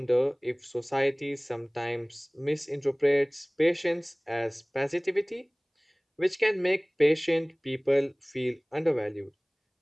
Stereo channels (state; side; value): identical; both; correlation 1.00